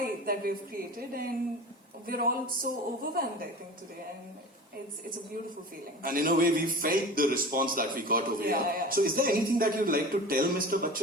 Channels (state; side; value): normal; both; correlation 0.35